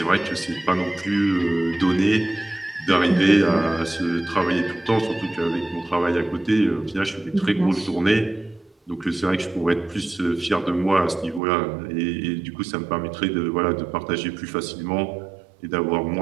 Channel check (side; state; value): left; drops out; at 11.4 s